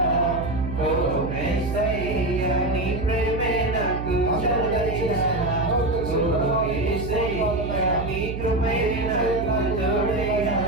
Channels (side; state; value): right; noise; hum, 6 dB below the sound